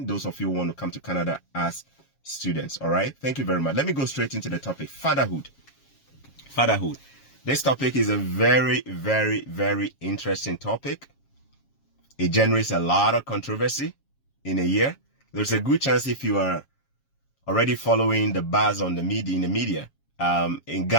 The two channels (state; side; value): late; right; 7.3 ms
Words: Those of you who want to come to Canada as students. All right. Thank you very much. Let me go straight into the topic. Fatherhood. Fatherhood. This topic is a very, very, very interesting topic. It generates a lot of controversy in a year. There's a good chance if you are already following the buzz on the media, in